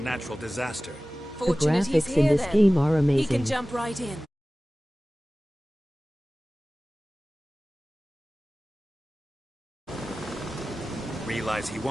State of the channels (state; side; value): normal; both; correlation 0.97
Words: disaster. The Fortunate he's graphics in here this then. game are He amazing. can jump right in. Realize he